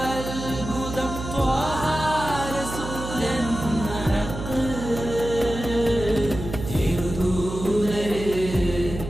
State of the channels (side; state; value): right; noise; hum, 8 dB below the sound